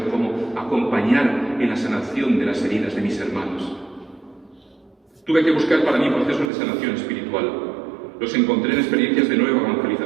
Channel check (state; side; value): drops out; left; at 6.5 s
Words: cómo acompañar en la sanación de las heridas de mis hermanos. Tuve que buscar para mí procesos de sanación espiritual. Los encontré en experiencias de nueva